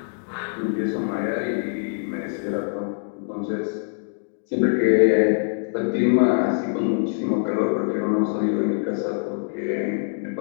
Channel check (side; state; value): right; silent; digital silence